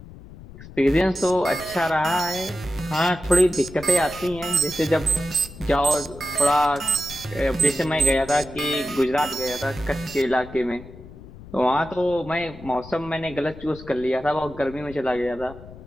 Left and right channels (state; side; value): noise; left; rumble, 17 dB below the sound